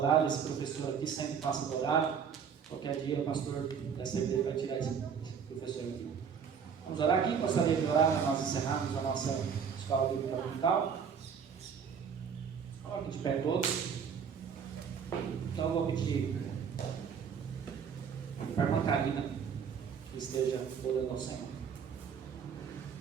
Esse professor aqui sempre passa do horário. Qualquer dia o pastor dessa igreja vai tirar esse professor aqui. Vamos orar aqui? Gostaria de orar para nós encerrarmos a nossa escola bíblica dominical. Coloque de pé todos. Então eu vou pedir para a irmã Karina que esteja orando ao Senhor.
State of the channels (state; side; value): quieter; left; 6.9 dB